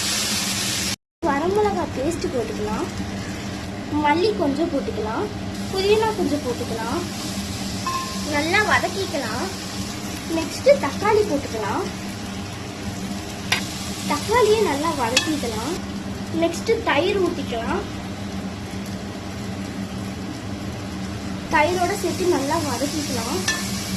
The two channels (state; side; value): identical; both; correlation 1.00